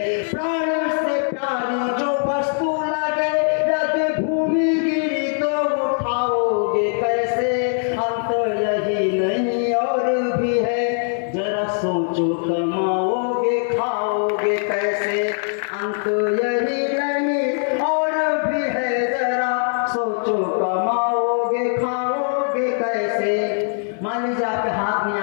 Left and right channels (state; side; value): silent; right; 65 dB below the other